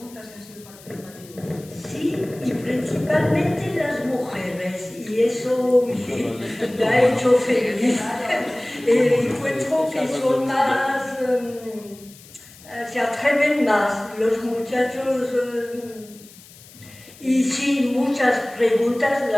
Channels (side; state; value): left; noise; hiss, 22 dB below the sound